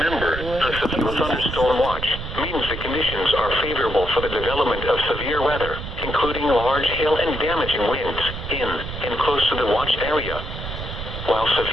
a severe thunderstorm watch means the conditions are favorable for the development of severe weather, including large hail and damaging winds in and close to the watched area. While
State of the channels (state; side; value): noise; right; rumble, 8 dB below the sound